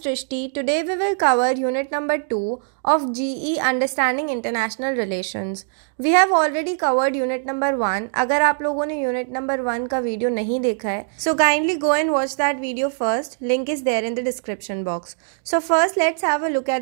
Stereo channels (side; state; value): left; silent; digital silence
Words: Today we will cover unit number 2 of GE Understanding International Relations. We have already covered unit number 1. अगर आप लोगों ने unit number 1 का video नहीं देखा है, so kindly go and watch that video first. Link is there in the description box. So first let's have a look